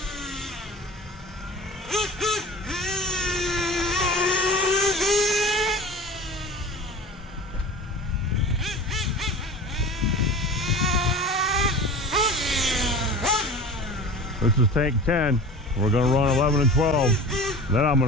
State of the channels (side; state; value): both; normal; correlation 0.36